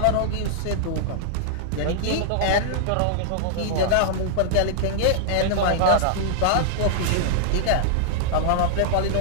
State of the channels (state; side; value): different; both; correlation -0.01